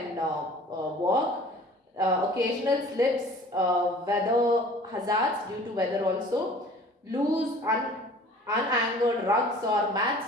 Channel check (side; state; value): both; normal; correlation 0.47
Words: walk. Occasional slips, weather hazards due to weather also. Loose, unanchored rugs or